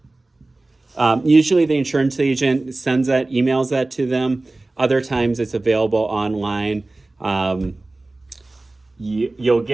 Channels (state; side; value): quieter; left; 3.0 dB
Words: Usually the insurance agent emails that to them. Other times it's available online. You'll